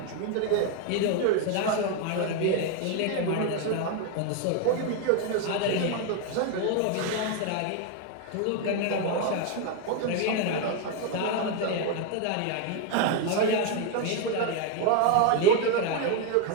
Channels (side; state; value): both; different; correlation 0.01